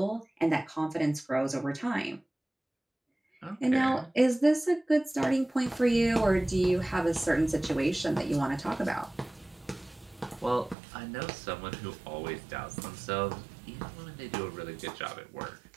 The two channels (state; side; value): drops out; left; at 10.8 s